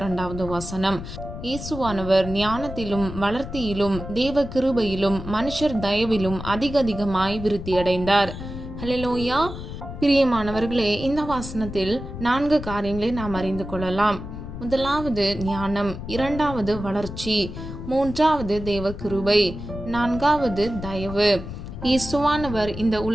வசனம். இயேசுவானவர் ஞானத்திலும் வளர்த்தியிலும் தேவ கிருபையிலும் மனுஷர் தயவிலும் அதிகமாய் விருத்தியடைந்தார். ஹல்லேலூயா. பிரியமானவர்களே, இந்த வசனத்தில் 4 காரியங்களை நாம் அறிந்து கொள்ளலாம். முதலாவது ஞானம், இரண்டாவது வளர்ச்சி, மூன்றாவது தேவ கிருபை, நான்காவது தயவு. இயேசுவானவர் இந்த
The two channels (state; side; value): noise; left; rumble, 9 dB below the sound